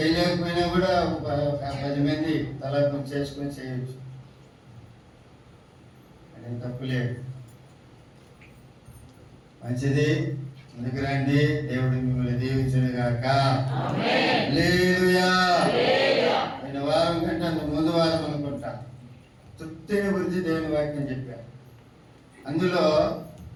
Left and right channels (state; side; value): identical; both; correlation 1.00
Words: కూడా 10 మంది తల చేసుకొని చేయొచ్చు. అది తప్పులేదు. మంచిది, ముందుకు రండి. దేవుడు మిమ్మల్ని దీవించును గాక. హల్లెలూయా. ఆయన వారం కంటే అంత ముందు వారం అనుకుంటా తృప్తిని గురించి దేవుని వాక్యం చెప్పారు. అందులో